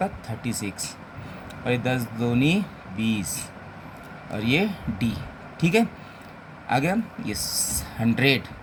है, 36। और ये 10 दूनी 20, और ये d। ठीक है, आ गया ये 100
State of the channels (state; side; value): identical; both; correlation 1.00